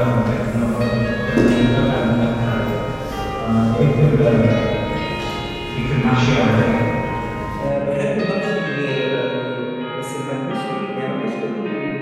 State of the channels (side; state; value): both; identical; correlation 1.00